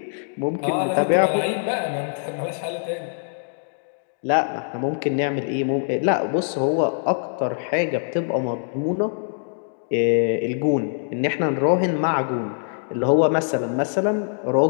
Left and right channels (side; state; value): right; silent; digital silence